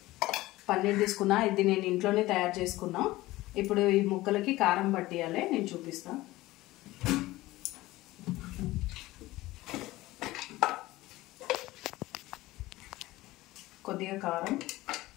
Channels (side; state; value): right; quieter; 18.1 dB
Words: పన్నీర్ తీసుకున్నా, ఇది నేను ఇంట్లోనే తయారు చేసుకున్నా. ఇప్పుడు ఈ ముక్కలకి కారం పట్టియాలి, నేను చూపిస్తా. కొద్దిగా కారం,